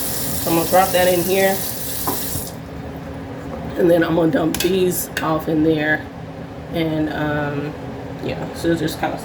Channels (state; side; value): identical; both; correlation 1.00